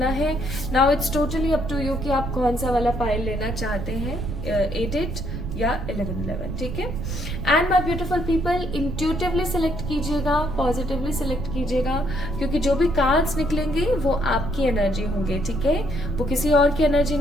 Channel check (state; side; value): noise; right; rumble, 5 dB below the sound